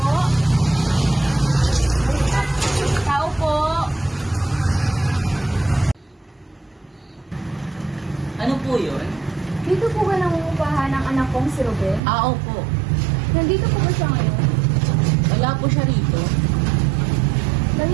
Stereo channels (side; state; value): left; drops out; at 12.0 s